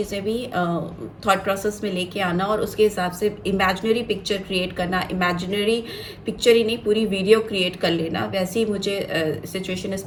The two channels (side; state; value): both; identical; correlation 1.00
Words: भी थॉट प्रोसेस में लेके आना और उसके हिसाब से इमेजिनरी पिक्चर क्रिएट करना, इमेजिनरी पिक्चर ही नहीं पूरी वीडियो क्रिएट कर लेना। वैसे ही मुझे सिचुएशन इस